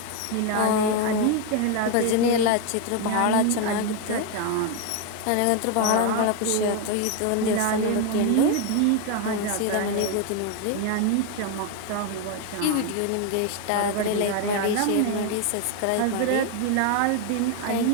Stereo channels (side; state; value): both; different; correlation 0.01